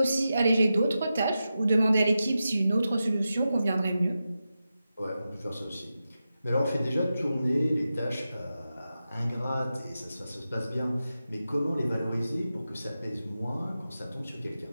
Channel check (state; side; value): inverted; both; correlation -0.91